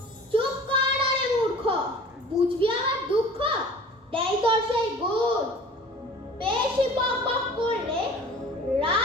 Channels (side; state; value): both; normal; correlation 0.44